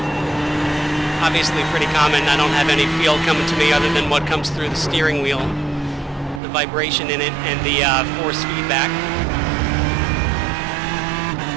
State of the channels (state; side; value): drops out; left; at 6.4 s